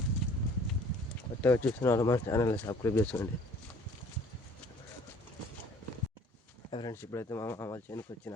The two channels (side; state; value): both; normal; correlation 0.53